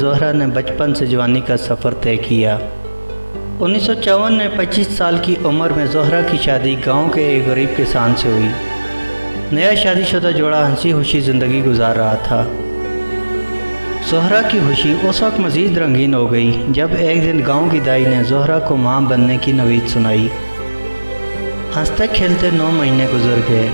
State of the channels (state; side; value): inverted; both; correlation -1.00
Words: نے بچپن سے جوانی کا سفر طے کیا۔ 1954 میں 25 سال کی عمر میں زہرہ کی شادی گاؤں کے ایک غریب کسان سے ہوئی۔ نیا شادی شدہ جوڑا ہنسی خوشی زندگی گزار رہا تھا۔ زہرہ کی خوشی اس وقت مزید رنگین ہو گئی جب ایک دن گاؤں کی دائی نے زہرہ کو ماں بننے کی نوید سنائی۔ ہنستے کھیلتے 9 مہینے گزر گئے